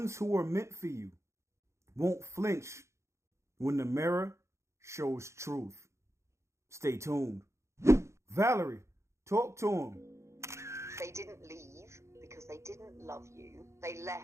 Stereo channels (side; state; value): left; late; 0.14 ms